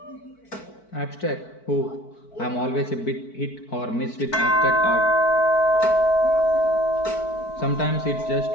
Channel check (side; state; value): right; late; 4.5 ms